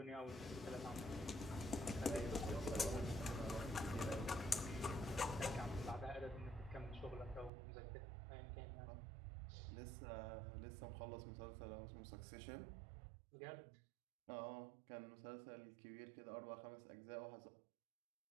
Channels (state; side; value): drops out; left; at 7.5 s